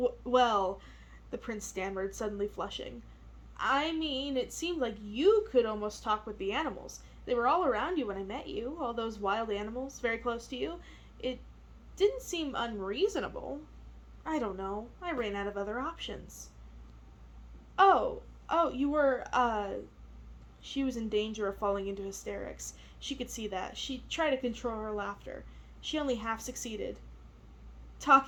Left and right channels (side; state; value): both; identical; correlation 1.00